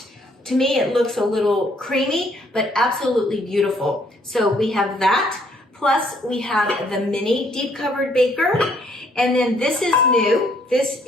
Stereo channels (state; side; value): normal; both; correlation 0.66